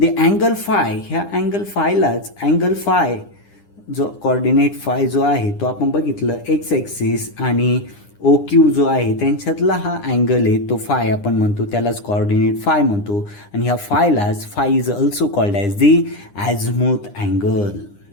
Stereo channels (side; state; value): right; late; 9.8 ms